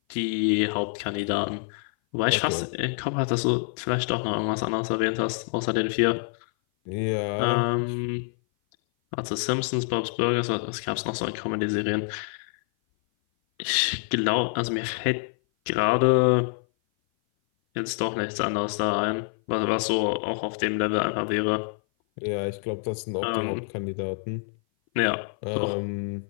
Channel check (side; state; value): right; silent; 56 dB below the other